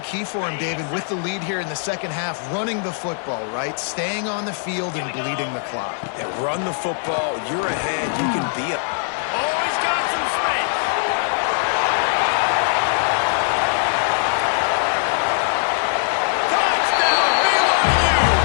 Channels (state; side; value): silent; right; digital silence